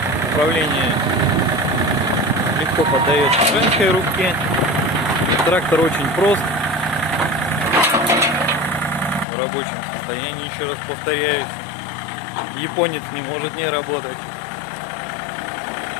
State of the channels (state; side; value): drops out; right; at 9.2 s